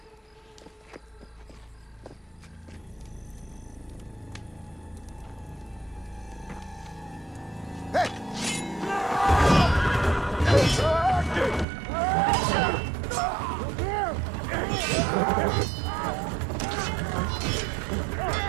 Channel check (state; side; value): drops out; left; at 11.7 s